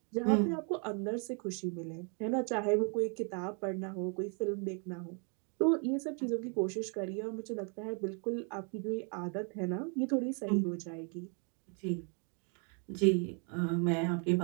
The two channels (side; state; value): left; quieter; 39.1 dB